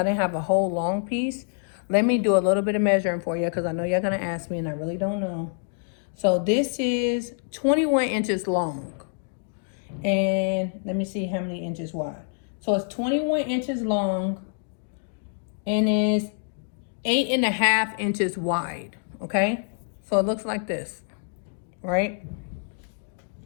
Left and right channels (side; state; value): right; silent; digital silence